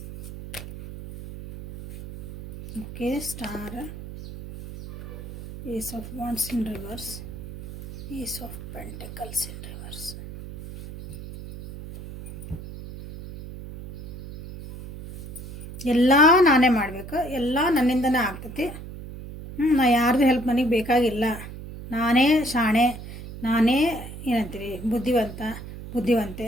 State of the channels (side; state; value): right; noise; hum, 12 dB below the sound